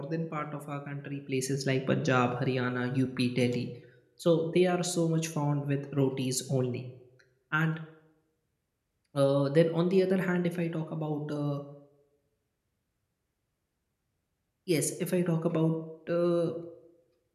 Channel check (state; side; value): identical; both; correlation 1.00